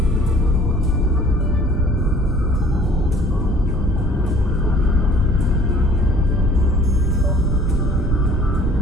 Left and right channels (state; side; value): normal; both; correlation 0.53